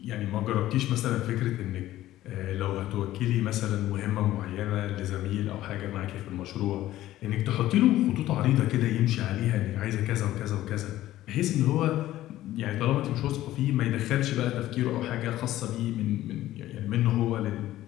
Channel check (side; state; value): right; quieter; 14.6 dB